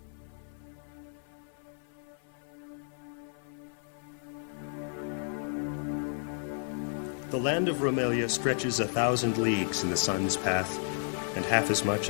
The land of Romelia stretches 1,000 leagues in the sun's path, and half as much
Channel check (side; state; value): right; silent; 55 dB below the other